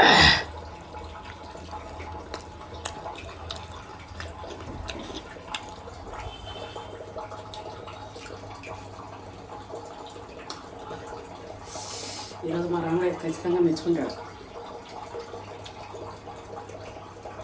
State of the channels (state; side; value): identical; both; correlation 1.00